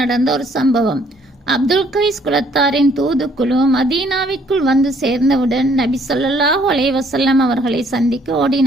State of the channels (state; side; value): normal; both; correlation 0.64